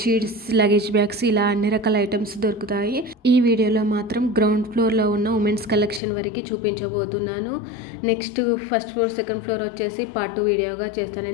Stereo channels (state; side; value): drops out; right; at 6.0 s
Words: luggage bags ఇలా అన్ని రకాల ఐటమ్స్ దొరుకుతాయి. ఈ వీడియోలో మాత్రం గ్రౌండ్ ఫ్లోర్లో ఉన్న ఉమెన్స్ కలెక్షన్ వరకు చూపించబోతున్నాను. Next first floor, second floor వచ్చేసి పార్ట్ 2 వీడియోగా చేస్తాను,